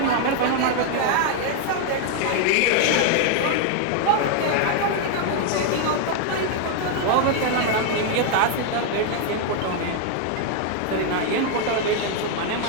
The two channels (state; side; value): different; both; correlation 0.00